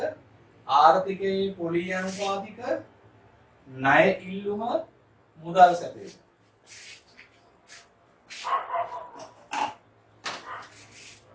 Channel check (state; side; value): identical; both; correlation 1.00